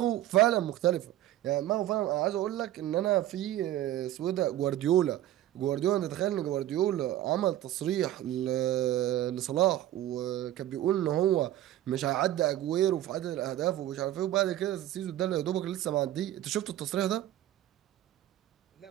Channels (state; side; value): quieter; left; 13.4 dB